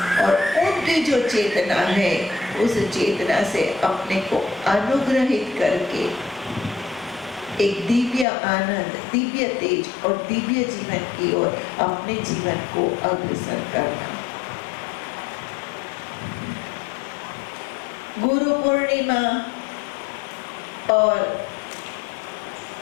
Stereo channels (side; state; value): right; drops out; at 8.2 s